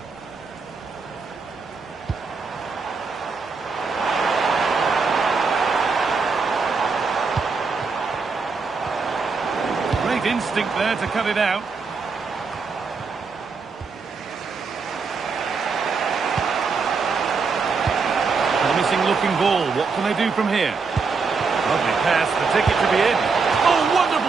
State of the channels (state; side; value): quieter; left; 4.8 dB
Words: Great instinct there to cut it out. Promising looking ball. What can they do from here? Lovely pass, the ticket to be in. Oh,